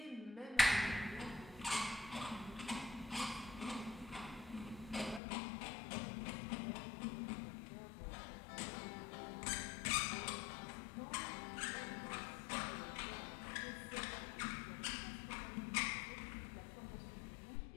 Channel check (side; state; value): right; drops out; at 5.2 s